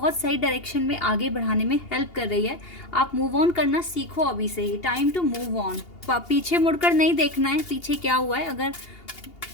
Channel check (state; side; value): late; right; 2.8 ms